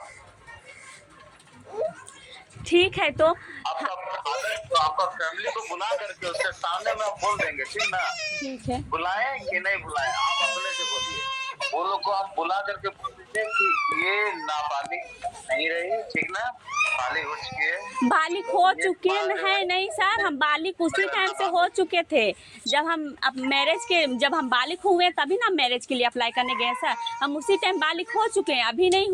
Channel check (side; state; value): both; identical; correlation 1.00